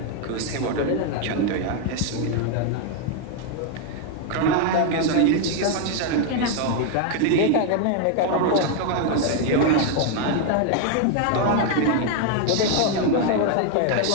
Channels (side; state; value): both; different; correlation 0.01